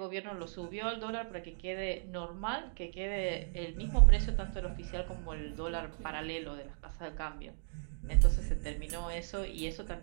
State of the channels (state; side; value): silent; left; digital silence